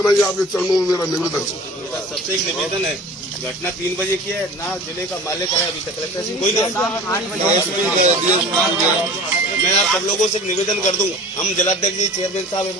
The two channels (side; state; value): both; normal; correlation 0.40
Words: ही आपके चरणों में मेरा निवेदन है। सबसे एक निवेदन है, घटना 3 बजे की है, ना जिले का मालिक है अभी तक, कलेक्टर से कोई मैं आप सब लोगों से एक निवेदन कर दूं, हम जिलाध्यक्ष जी, चेयरमैन साहब एक